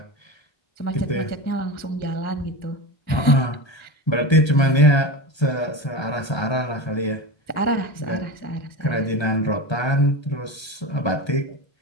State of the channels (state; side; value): late; right; 1.2 ms